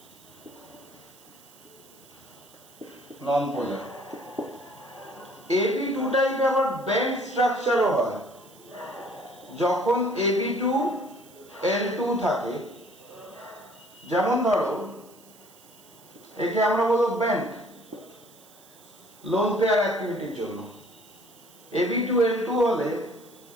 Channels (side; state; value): right; noise; hiss, 24 dB below the sound